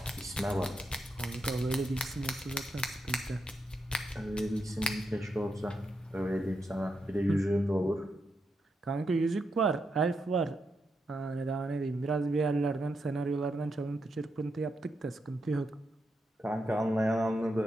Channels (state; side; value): normal; both; correlation 0.83